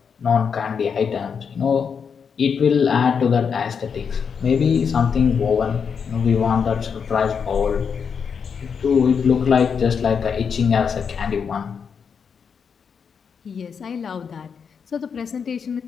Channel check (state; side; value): quieter; right; 6.5 dB